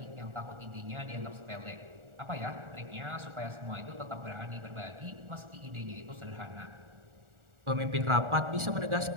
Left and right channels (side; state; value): left; late; 1.4 ms